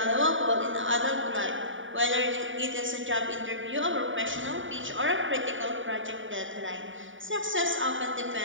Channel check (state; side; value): late; left; 0.57 ms